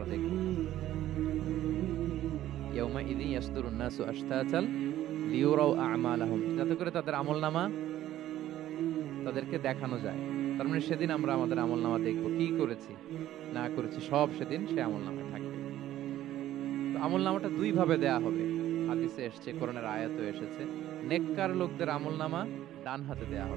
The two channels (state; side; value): quieter; left; 13.3 dB